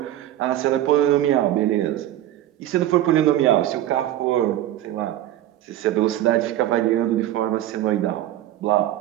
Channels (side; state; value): left; quieter; 13.2 dB